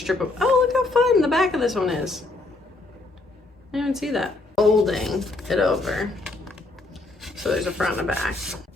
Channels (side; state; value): right; quieter; 3.1 dB